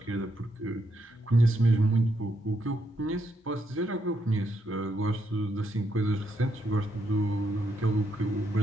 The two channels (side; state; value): both; normal; correlation 0.79